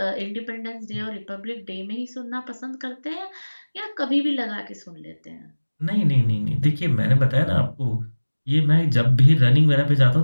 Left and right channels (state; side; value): inverted; both; correlation -1.00